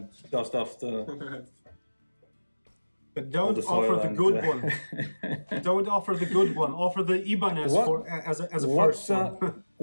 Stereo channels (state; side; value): inverted; both; correlation -1.00